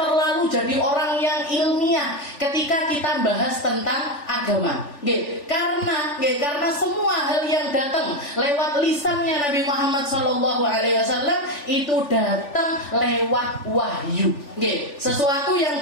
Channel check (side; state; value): right; late; 3.4 ms